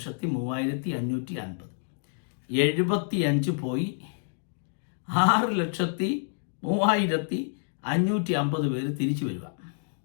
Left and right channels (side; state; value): right; silent; digital silence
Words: 75 പോയി 6,03,550 പേര് തിരിച്ചു വരിക